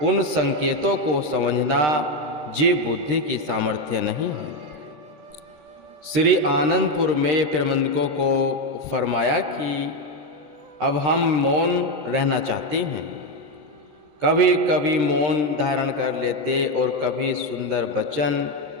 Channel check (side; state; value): left; late; 13 ms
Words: उन संकेतों को समझना ये बुद्धि की सामर्थ्य नहीं है। श्री आनंदपुर में प्रबंधकों को फरमाया कि अब हम मौन रहना चाहते हैं। कभी कभी मौन धारण कर लेते और कभी सुंदर वचन